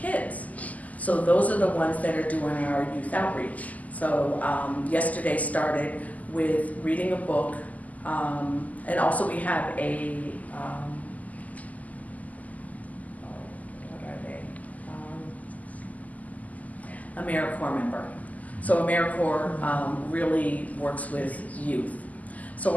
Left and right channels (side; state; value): right; late; 0.076 ms